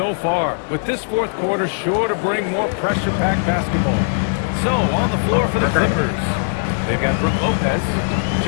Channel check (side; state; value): right; silent; 66 dB below the other